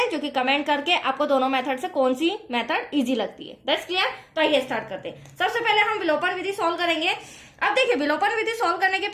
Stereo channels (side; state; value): both; identical; correlation 1.00